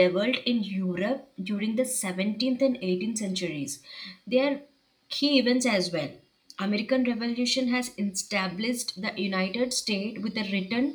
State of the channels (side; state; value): both; identical; correlation 1.00